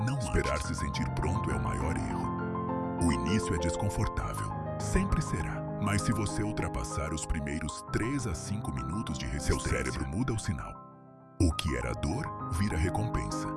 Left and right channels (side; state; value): both; identical; correlation 1.00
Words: não esperar se sentir pronto é o maior erro. O início é desconfortável, sempre será. Mas se você ultrapassar os primeiros 3 a 5 minutos de resistência, seu cérebro muda o sinal. O que era dor, vira recompensa.